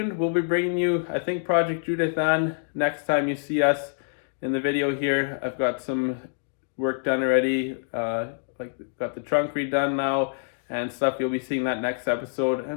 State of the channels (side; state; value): right; silent; digital silence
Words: We'll be bringing you, I think, Project Judith Ann next time you see us in the video here. I've got some work done already, like got the trunk redone now and stuff. You'll be seeing that next episode,